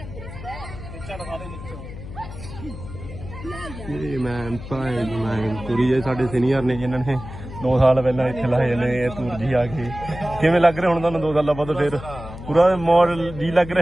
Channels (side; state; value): left; noise; hum, 12 dB below the sound